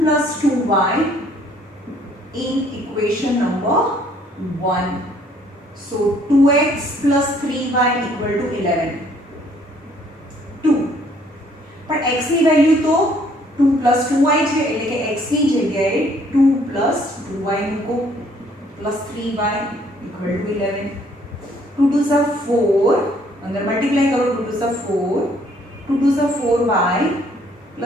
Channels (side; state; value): both; normal; correlation 0.63